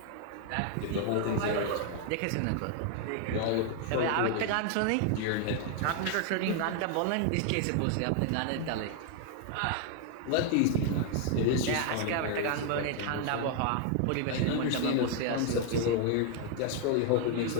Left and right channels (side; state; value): both; different; correlation 0.00